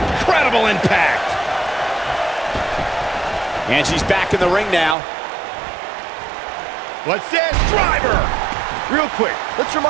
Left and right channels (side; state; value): left; drops out; at 5.0 s